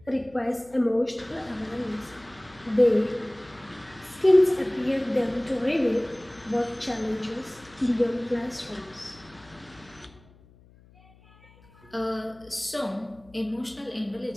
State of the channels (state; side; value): noise; left; hum, 26 dB below the sound